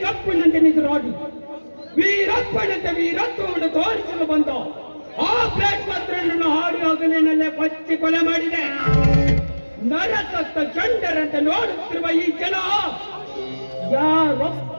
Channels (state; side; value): inverted; both; correlation -1.00